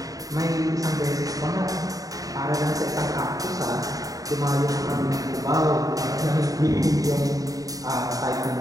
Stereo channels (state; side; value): late; left; 0.17 ms